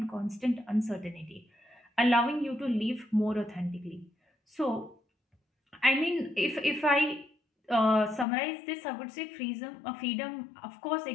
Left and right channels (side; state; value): right; drops out; at 8.2 s